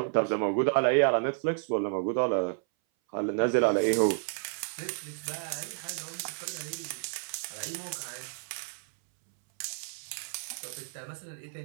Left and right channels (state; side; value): silent; left; 57 dB below the other